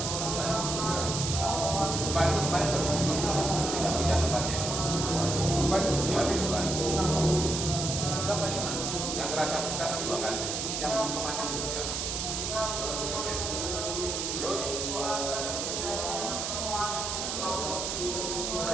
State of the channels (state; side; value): noise; right; hiss, 2 dB below the sound